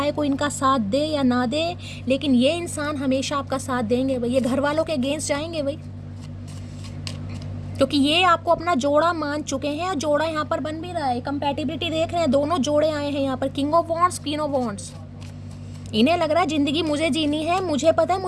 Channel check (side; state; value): both; identical; correlation 1.00